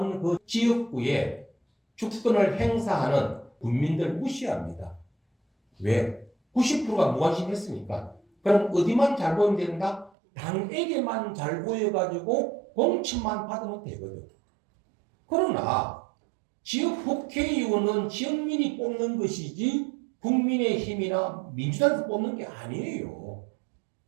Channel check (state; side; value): drops out; left; at 10.1 s